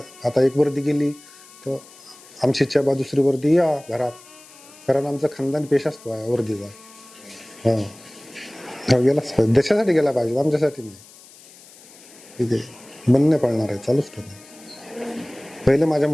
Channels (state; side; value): noise; left; hiss, 22 dB below the sound